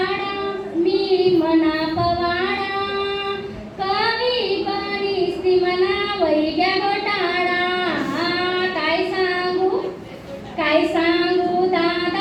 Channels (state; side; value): identical; both; correlation 1.00